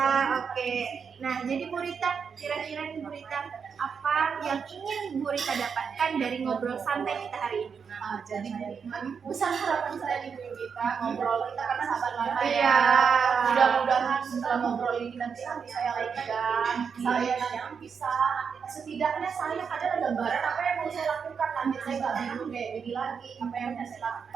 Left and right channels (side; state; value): left; quieter; 6.3 dB